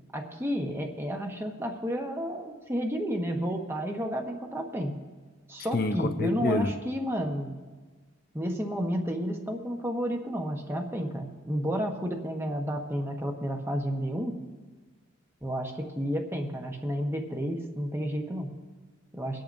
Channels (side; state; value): both; normal; correlation 0.77